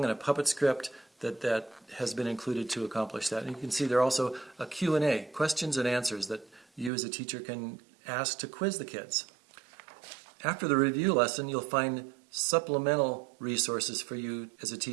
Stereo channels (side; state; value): left; drops out; at 6.9 s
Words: and a puppet script that has been included to accomplish that. And you can see there are also a Q&A, questions and answers, that you as a teacher can ask to quiz the kids. After the review lesson, you'll find supplemental resources for you as a